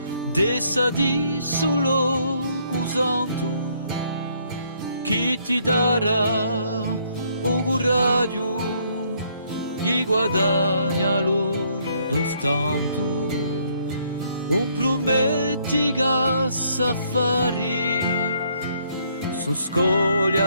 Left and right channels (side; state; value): both; inverted; correlation -0.68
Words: dessa di solo cusando, chi ti darà o coraggio, gli guadagna lo dostanto, un prometti che s'affari, su